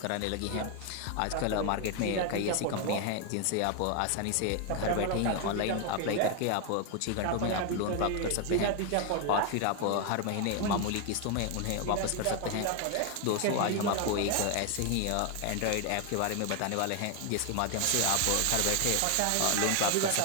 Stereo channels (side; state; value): both; different; correlation 0.01